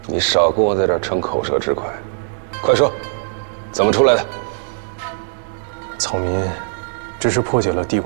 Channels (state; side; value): silent; left; digital silence